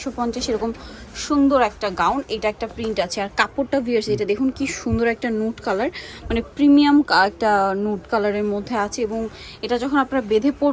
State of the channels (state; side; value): identical; both; correlation 1.00